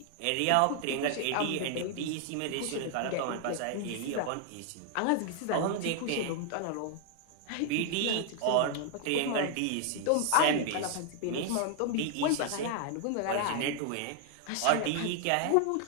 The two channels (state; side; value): different; both; correlation 0.00